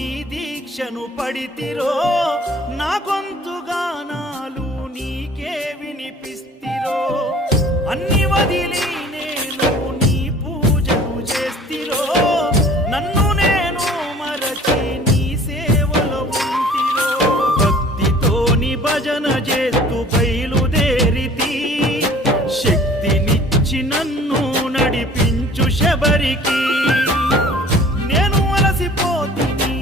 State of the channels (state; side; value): normal; both; correlation 0.49